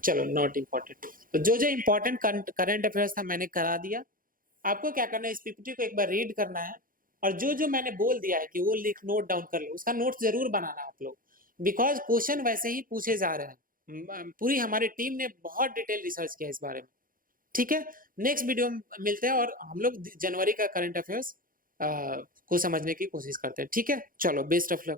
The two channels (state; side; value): late; left; 0.41 ms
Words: चलो not important. तो जो जो important current affairs था मैंने करा दिया। आपको क्या करना है, इस पीपीटी को एक बार रीड करना है, और जो जो मैंने बोल दिया है कि वो लिख नोट डाउन कर लो, उसका नोट जरूर बनाना आप लोग, बिकॉज क्वेश्चन वैसे ही पूछे जा रहे हैं। पूरी हमारी टीम ने बहुत डिटेल रिसर्च किया इस बारे में, ठीक है। नेक्स्ट वीडियो में मिलते हैं और हम लोग जनवरी का करंट अफेयर्स को समझने की कोशिश करते हैं, ठीक है। चलो बेस्ट ऑफ